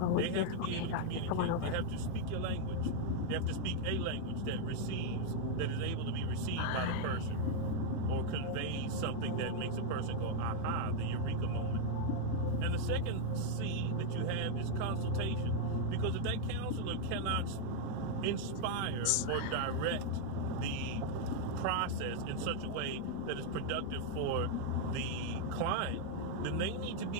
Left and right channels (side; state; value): both; different; correlation 0.00